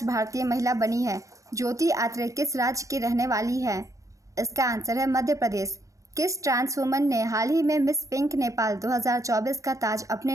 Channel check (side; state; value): left; late; 0.16 ms